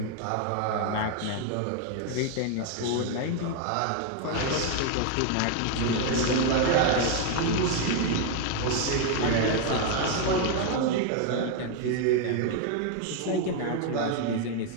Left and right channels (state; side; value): different; both; correlation 0.01